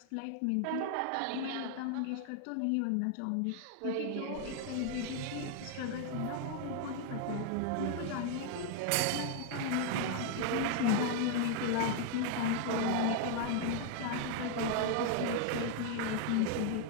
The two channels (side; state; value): both; different; correlation 0.00